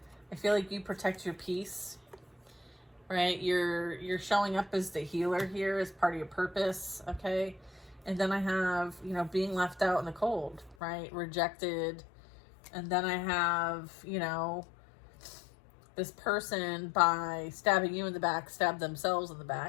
I feel like you protect your peace, right? You're showing up as the healer here as part of your purpose, okay? And then I have, you know, being left out in the cold, right? Rejected. And then I have, you know, this person, by stabbing you in the back, stabbed themselves in the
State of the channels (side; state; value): right; drops out; at 10.8 s